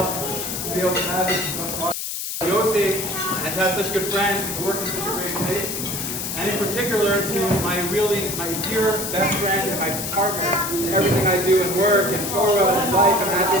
to be able to have this Yosef and to have such good friends, to work in such a great place. And in particular to my dear best friend and my partner in everything I do in work and Torah and life and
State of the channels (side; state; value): left; noise; hiss, 4 dB below the sound